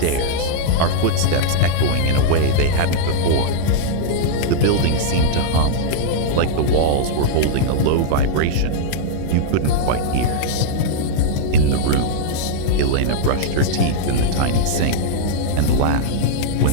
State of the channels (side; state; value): both; different; correlation -0.01